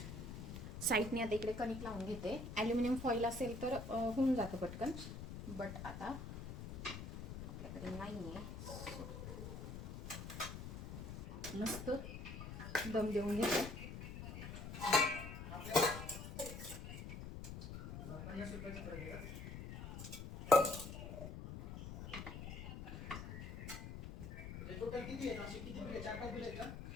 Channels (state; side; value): noise; left; rumble, 8 dB below the sound